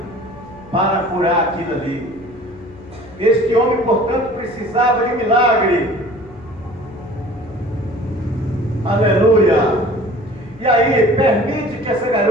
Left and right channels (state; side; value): noise; left; hum, 24 dB below the sound